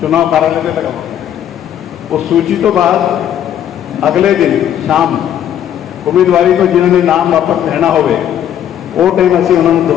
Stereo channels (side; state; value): right; quieter; 10.3 dB